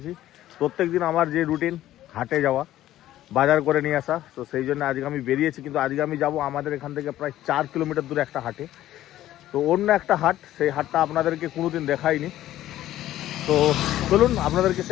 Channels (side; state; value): right; quieter; 13.7 dB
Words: প্রত্যেক দিন আমার যে রুটিন হাটে যাওয়া, বাজার করে নিয়ে আসা, তো সেই জন্য আজকে আমি বেরিয়েছি। কিন্তু আজকে আমি যাব আমাদের এখান থেকে প্রায় 4 কিলোমিটার দূরে একটা হাটে। তো অন্য একটা হাট, সেই হাটটা আপনাদেরকে কোনোদিন দেখাইনি। তো চলুন আপনাদেরকে